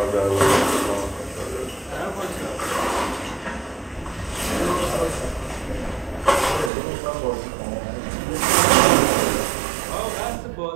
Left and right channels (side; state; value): left; drops out; at 6.7 s